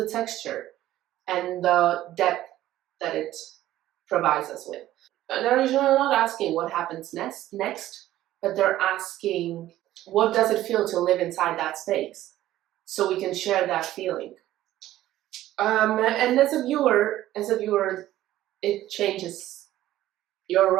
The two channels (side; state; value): left; quieter; 14.2 dB